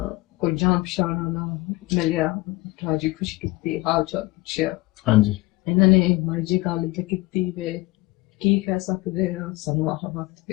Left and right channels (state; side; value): quieter; right; 20.6 dB